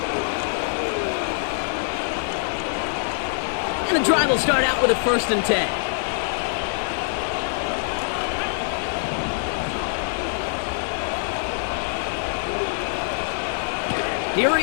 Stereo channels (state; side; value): silent; right; 58 dB below the other